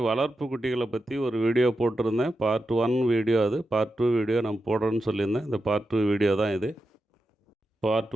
வளர்ப்பு குட்டிகளை பற்றி ஒரு வீடியோ போட்டிருந்தேன். பார்ட் 1 வீடியோ அது. பார்ட் 2 வீடியோ நான் போடுறேன்னு சொல்லியிருந்தேன். இந்த பார்ட் 2 வீடியோ தான் இது. பார்ட்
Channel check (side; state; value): both; normal; correlation 0.89